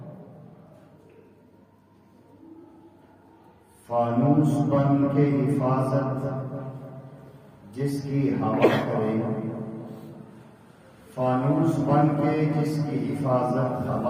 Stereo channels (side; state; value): both; identical; correlation 1.00